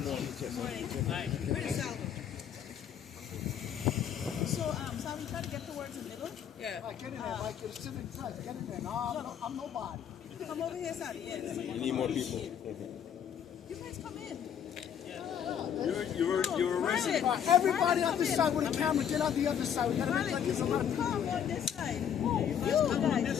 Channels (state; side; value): quieter; right; 8.7 dB